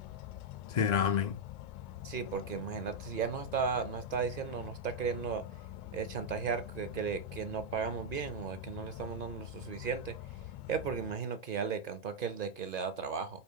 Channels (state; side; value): late; right; 1.9 ms